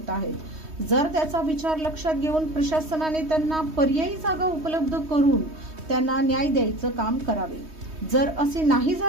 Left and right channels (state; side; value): late; left; 3.2 ms